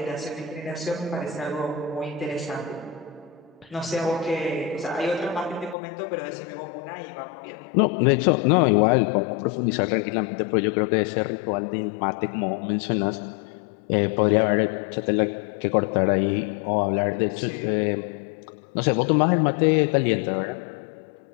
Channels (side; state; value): right; drops out; at 5.8 s